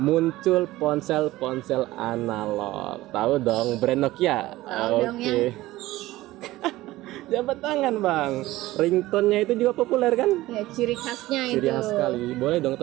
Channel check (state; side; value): quieter; left; 17.3 dB